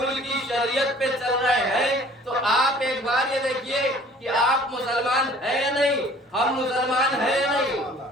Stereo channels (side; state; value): both; normal; correlation 0.52